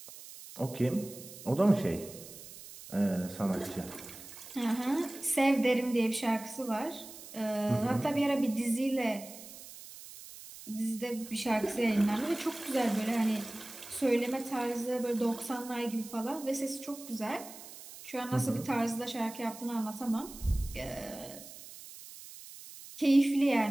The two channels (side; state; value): right; noise; hiss, 15 dB below the sound